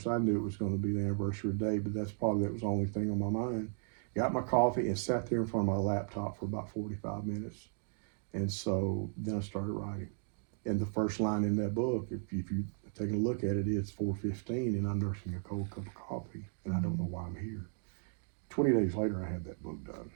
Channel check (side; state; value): left; silent; 54 dB below the other